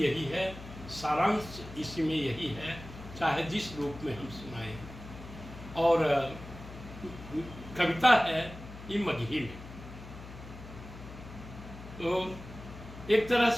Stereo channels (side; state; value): left; noise; hum, 14 dB below the sound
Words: है, सारांश इसमें यही है, चाहे जिस रूप में हम सुनाएं। और कविता है ये मगही में। तो एक तरह